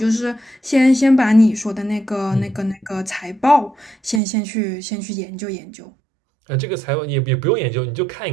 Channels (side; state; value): left; drops out; at 4.2 s